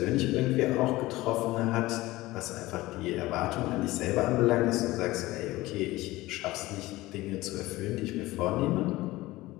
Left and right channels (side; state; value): right; quieter; 18.6 dB